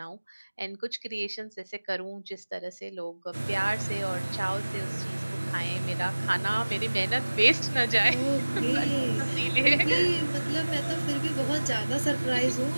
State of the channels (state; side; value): inverted; both; correlation -1.00